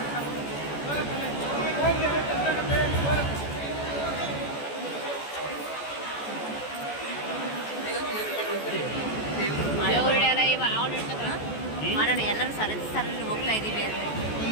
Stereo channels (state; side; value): late; right; 14 ms